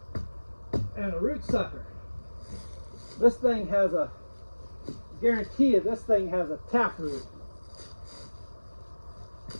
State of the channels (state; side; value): inverted; both; correlation -1.00